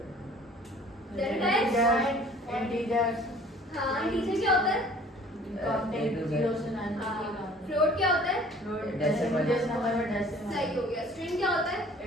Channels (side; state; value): both; normal; correlation 0.51